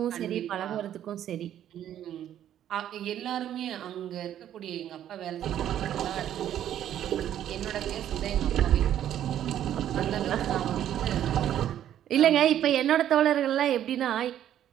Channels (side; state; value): left; quieter; 11.0 dB